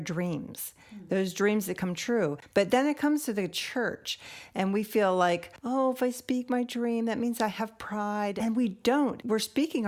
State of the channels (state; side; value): identical; both; correlation 1.00